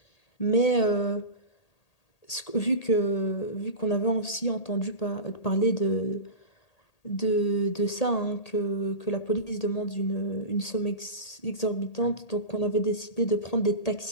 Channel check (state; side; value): late; right; 1.8 ms